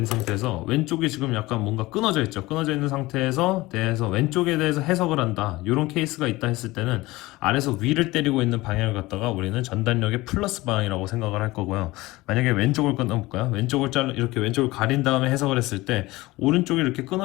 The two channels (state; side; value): quieter; right; 19.9 dB